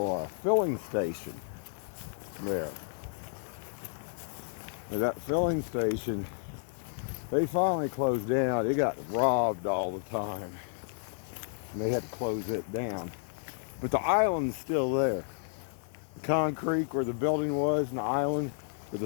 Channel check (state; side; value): silent; right; digital silence